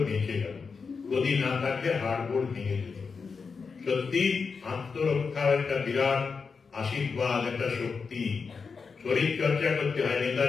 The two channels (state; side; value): quieter; right; 5.2 dB